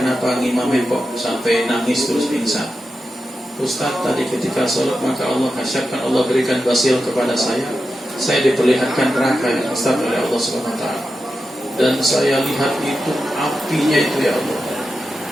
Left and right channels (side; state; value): both; normal; correlation 0.90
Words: ngimamin kok sampai nangis terus pingsan? Ustaz, tadi ketika sholat maka Allah kasyafkan, Allah berikan basil kepada saya diperlihatkan neraka yang Ustaz oleh Allah SWT, dan saya lihat itu apinya itu ya Allah,